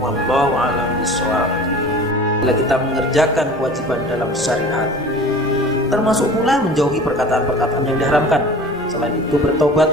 a'lam bishawab. Bila kita mengerjakan kewajiban dalam syariat, termasuk pula menjauhi perkataan-perkataan yang diharamkan. Selain itu, bertobat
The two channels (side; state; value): both; normal; correlation 0.41